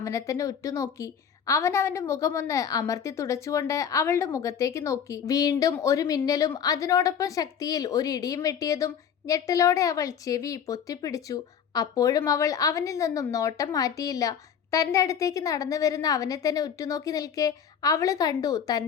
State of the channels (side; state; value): right; quieter; 7.9 dB